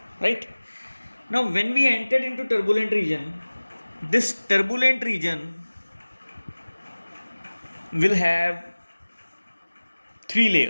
right? Now when we entered into turbulent region, this turbulent region will have three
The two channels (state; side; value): inverted; both; correlation -1.00